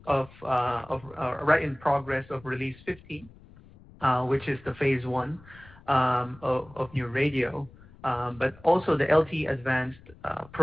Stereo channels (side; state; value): left; noise; rumble, 23 dB below the sound